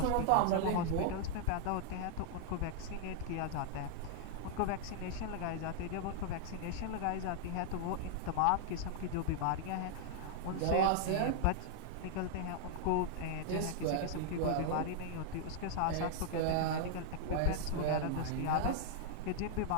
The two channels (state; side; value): different; both; correlation -0.01